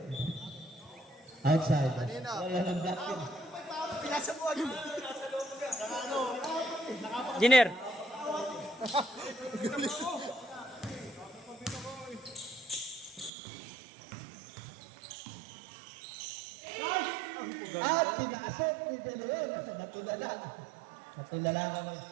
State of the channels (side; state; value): left; drops out; at 13.3 s